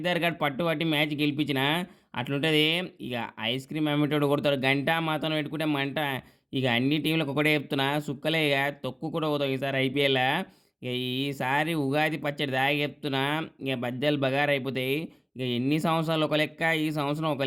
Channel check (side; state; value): both; identical; correlation 1.00